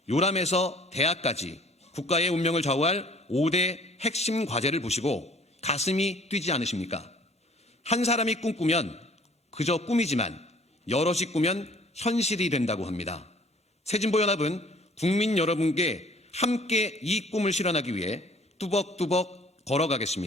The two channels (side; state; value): both; normal; correlation 0.54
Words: 요람에서 대학까지 국가의 운명을 좌우할 5대 핵심 과제를 보시고 가슴이 뛰지 않으십니까? 한 사람이 꿈꾸면 그저 꿈이지만 여럿이 꾸면 현실이 된다고 합니다. 새진보연합은 국민 여러분께 함께 이 꿈을 실현하기 위해 뚜벅뚜벅